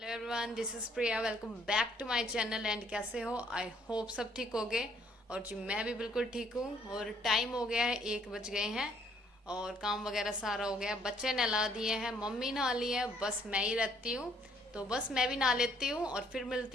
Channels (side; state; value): both; normal; correlation 0.65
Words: everyone, this is Priya. Welcome back to my channel. And कैसे हो? I hope सब ठीक हो गए। और जी मैं भी बिल्कुल ठीक हूँ। और टाइम हो गया है, 1 बज गए हैं। और काम वगैरह सारा हो गया, बच्चे नहला दिए हैं, मम्मी नहा ली है, बस मैं ही रहती हूँ। तो बस मैं भी नहा लेती हूँ और फिर